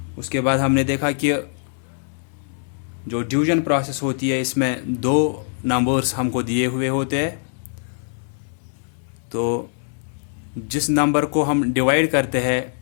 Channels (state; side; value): silent; right; digital silence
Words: उसके बाद हमने देखा कि जो डिवीजन प्रोसेस होती है इसमें दो नंबर्स हमको दिए हुए होते हैं, तो जिस नंबर को हम डिवाइड करते